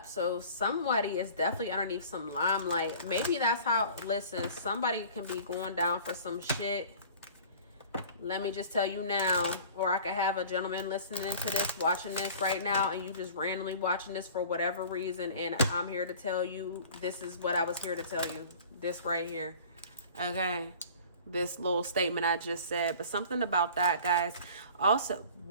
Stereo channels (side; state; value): both; inverted; correlation -0.44